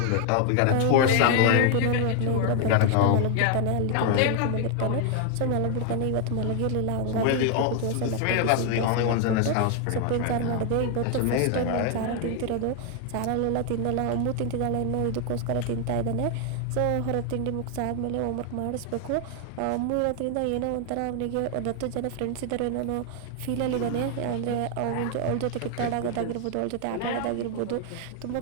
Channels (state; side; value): different; both; correlation 0.00